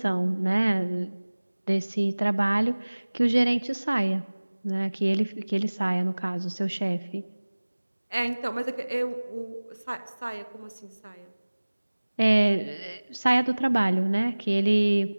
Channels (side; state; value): both; inverted; correlation -1.00